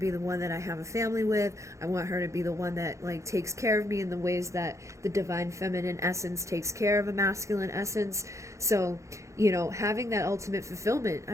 the one that I have a family with. I want her to be the one that like takes care of me in the ways that the divine feminine essence takes care of a masculine essence. So, you know, having that ultimate fulfillment,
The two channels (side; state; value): left; late; 0.15 ms